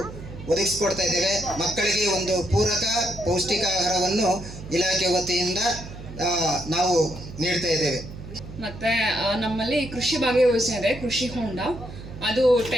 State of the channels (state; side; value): noise; right; hum, 13 dB below the sound